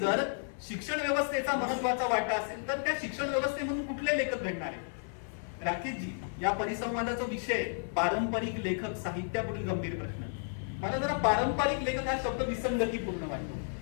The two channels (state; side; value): silent; right; 56 dB below the other